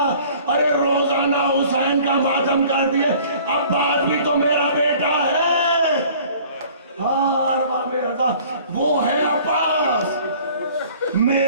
ارے روزانہ حسین کا ماتم کر دیے. عباس بھی تو میرا بیٹا ہے. ارباب رضا وہ ہے عباس.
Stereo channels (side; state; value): both; inverted; correlation -0.51